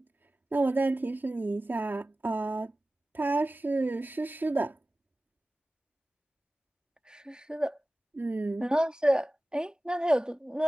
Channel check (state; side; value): normal; both; correlation 0.96